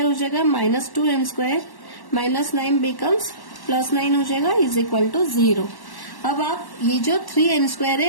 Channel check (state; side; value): late; right; 1.1 ms